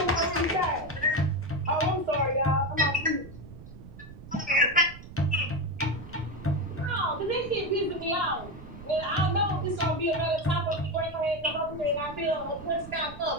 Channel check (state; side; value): noise; right; rumble, 15 dB below the sound